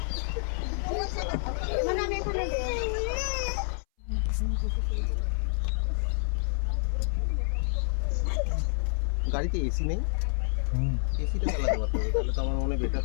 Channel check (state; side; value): silent; right; 59 dB below the other